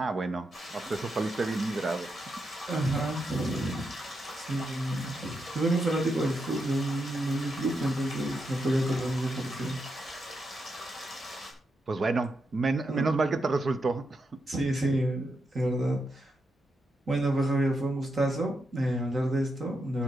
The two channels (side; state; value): both; normal; correlation 0.84